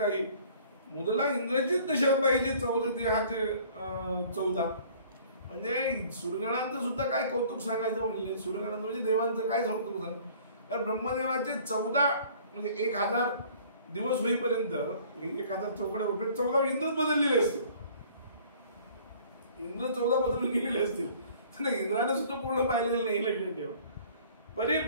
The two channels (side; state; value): both; inverted; correlation -0.53